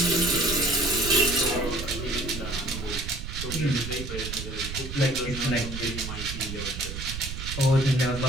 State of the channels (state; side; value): noise; right; rumble, 7 dB below the sound